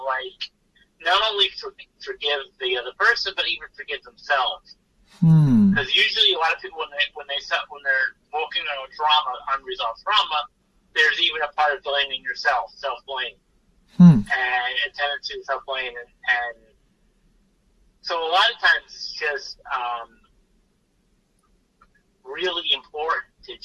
not only forgive the other person, but even forgive themselves. Because usually a lot of people when they're working on unresolved trauma, there's even a part of blaming yourself, self-blame. And a tendency to self-blame, and so a lot of times it's just really important to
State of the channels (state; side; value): identical; both; correlation 1.00